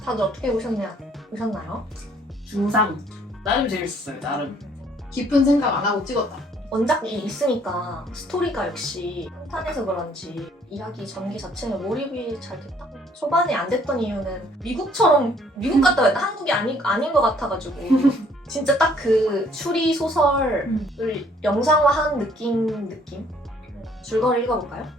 다들 어떻게 보셨나요? 중상. 나름 재밌었어요. 나름. 깊은 생각 안 하고 찍었다. 원작이 있으니까 스토리가 역시 탄탄해서 그런지 이야기 전개 자체에 몰입이 잘 됐다. 초반에 안 됐던 이유는 미국처럼 미국 갔다 왔다 한국이 아닌 것 같아가지고 진짜 딱 그 추리 소설을 영상화한 느낌? 줄거리 읽어볼까요?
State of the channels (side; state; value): both; normal; correlation 0.62